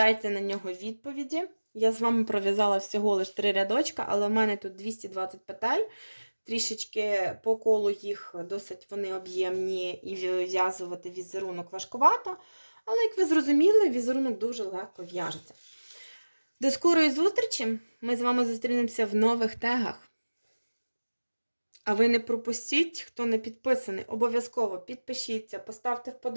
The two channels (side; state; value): both; inverted; correlation -1.00